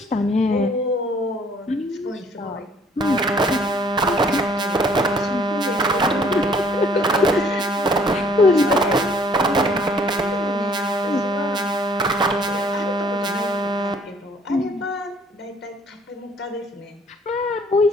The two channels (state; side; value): normal; both; correlation 0.59